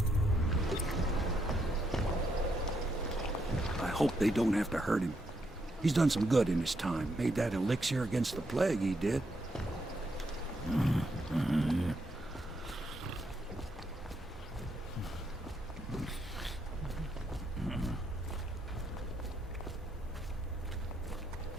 I hope they don't have to hurt him. He's done some good in his time. Made that elixir against the plague, he did.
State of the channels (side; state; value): both; normal; correlation 0.78